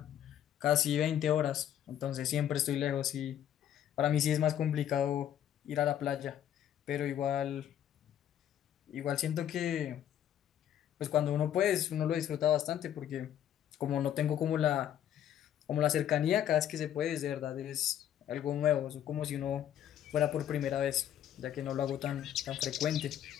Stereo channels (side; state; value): right; quieter; 10.5 dB